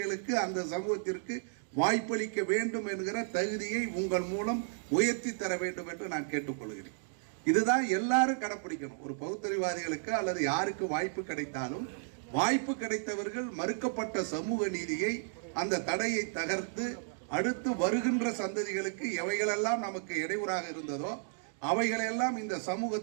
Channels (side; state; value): left; silent; digital silence